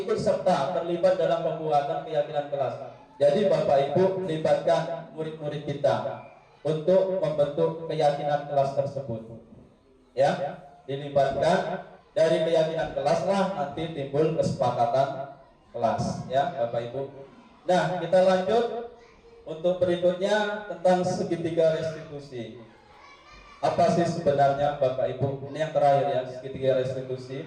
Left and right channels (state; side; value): identical; both; correlation 1.00